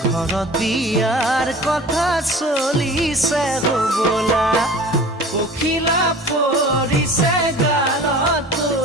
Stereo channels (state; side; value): normal; both; correlation 0.42